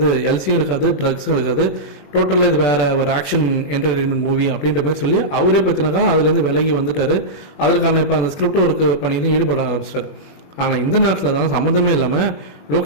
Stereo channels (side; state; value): right; late; 21 ms